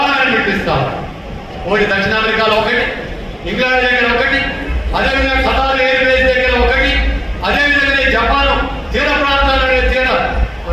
మిలిటరీ స్థావరాలు ఒకటి దక్షిణ అమెరికాలో ఒకటి, ఇంగ్లాండ్ దగ్గర ఒకటి, అదేవిధంగా ఖతార్ ఎయిర్ బేస్ దగ్గర ఒకటి, అదేవిధంగా జపాన్ తీర ప్రాంతాల్లో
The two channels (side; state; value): both; identical; correlation 1.00